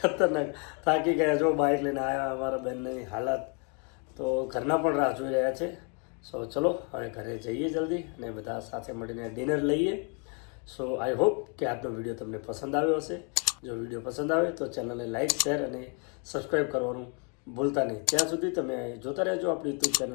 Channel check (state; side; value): quieter; right; 37.0 dB